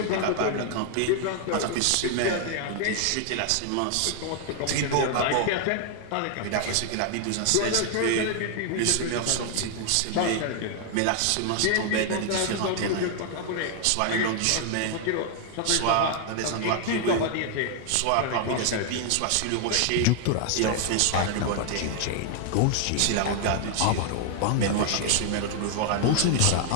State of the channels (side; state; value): both; different; correlation 0.00